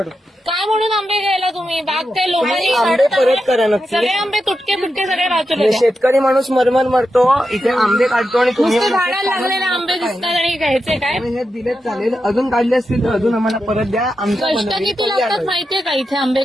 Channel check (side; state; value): both; normal; correlation 0.88